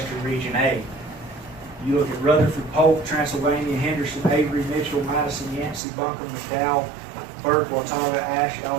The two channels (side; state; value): left; drops out; at 5.8 s